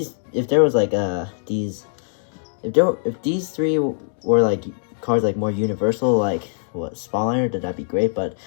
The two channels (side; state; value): right; silent; digital silence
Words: If there was like if these 3 were like cards like more universal, like what Spawner, then that'd be great. But